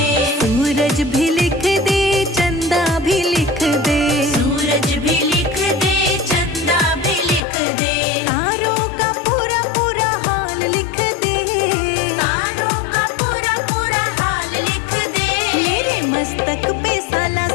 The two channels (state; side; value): drops out; right; at 7.4 s